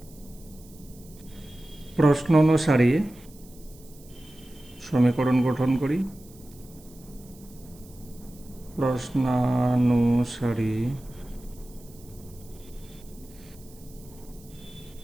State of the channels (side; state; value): right; noise; hiss, 24 dB below the sound